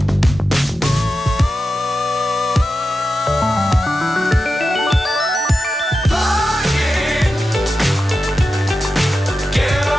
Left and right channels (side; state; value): both; normal; correlation 0.91